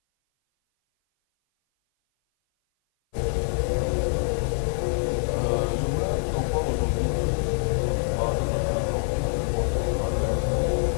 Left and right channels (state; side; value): silent; right; 57 dB below the other